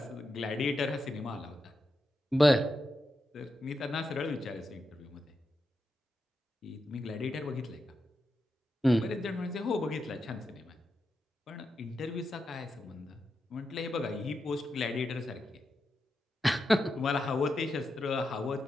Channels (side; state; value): both; normal; correlation 0.87